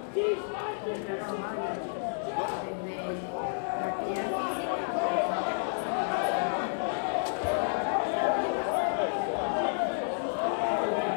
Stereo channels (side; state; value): right; silent; 57 dB below the other